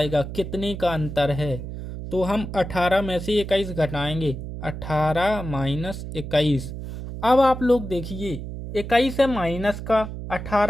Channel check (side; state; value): right; noise; hum, 8 dB below the sound